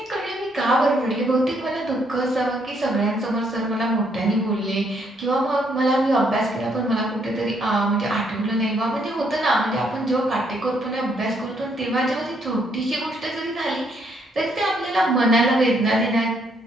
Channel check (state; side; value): normal; both; correlation 0.71